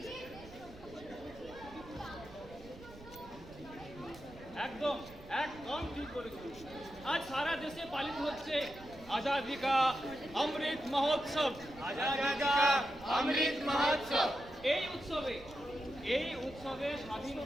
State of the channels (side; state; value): right; noise; rumble, 19 dB below the sound